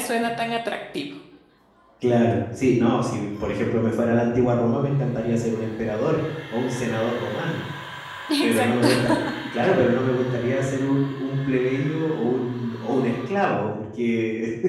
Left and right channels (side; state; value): both; identical; correlation 1.00